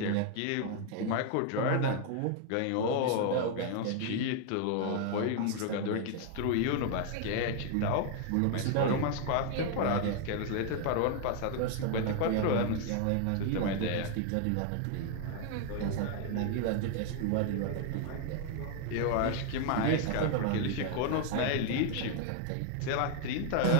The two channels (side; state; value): both; different; correlation 0.00